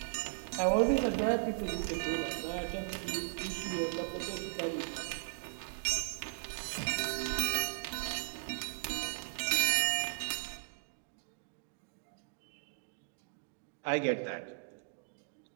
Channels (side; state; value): left; silent; digital silence